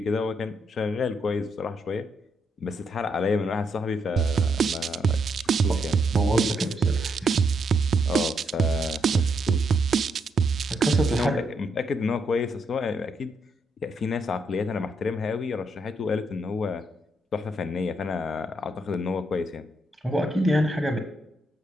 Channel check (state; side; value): normal; both; correlation 0.77